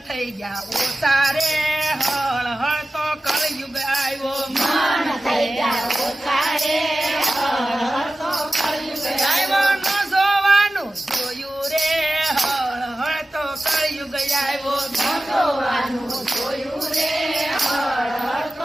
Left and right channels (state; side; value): normal; both; correlation 0.95